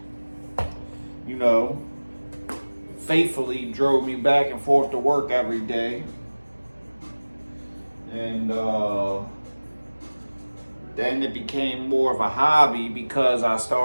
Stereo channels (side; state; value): both; inverted; correlation -1.00